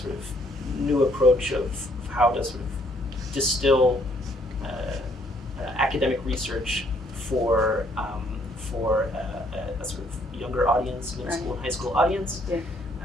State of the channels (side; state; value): both; normal; correlation 0.66